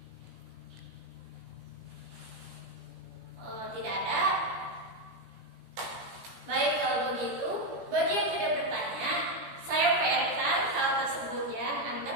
Tidak ada. Baik, kalau begitu, bagi yang tidak bertanya, saya PR-kan hal tersebut ya.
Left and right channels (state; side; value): late; left; 17 ms